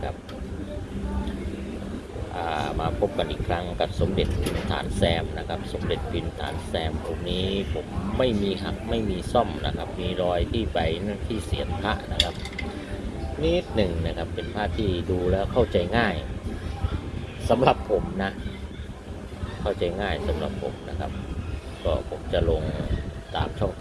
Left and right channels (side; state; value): both; identical; correlation 1.00